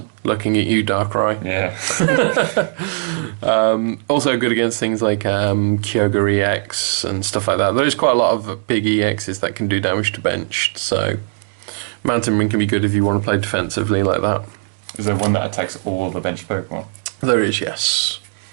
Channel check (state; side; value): silent; left; digital silence